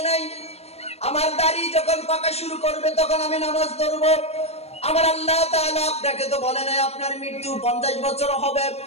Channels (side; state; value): right; late; 0.30 ms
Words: নাই, আমার দাড়ি যখন পাকা শুরু করবে তখন আমি নামাজ ধরবো। আমার আল্লাহ তাআলা আপনাকে তো বলে নাই আপনার মৃত্যু 50 বছর হবে,